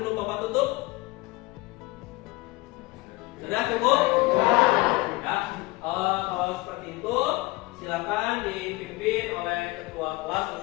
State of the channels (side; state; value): right; quieter; 22.3 dB